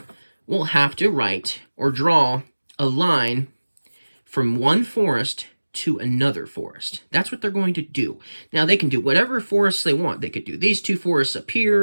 will have to write or draw a line from one forest to another forest. That's what they're going to do. Now, they can do whatever forests they want. They could do these 2 forests up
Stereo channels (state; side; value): inverted; both; correlation -1.00